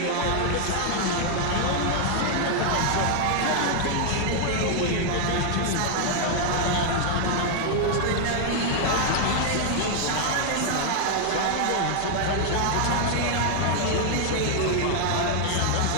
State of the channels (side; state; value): both; different; correlation 0.00